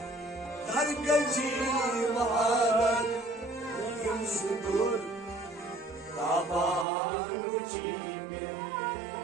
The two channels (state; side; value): drops out; left; at 6.9 s